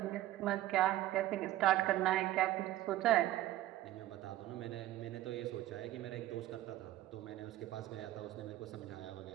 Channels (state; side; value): quieter; left; 14.8 dB